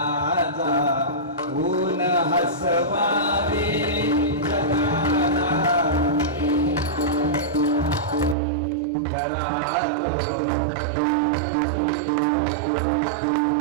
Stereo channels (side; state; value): left; drops out; at 8.3 s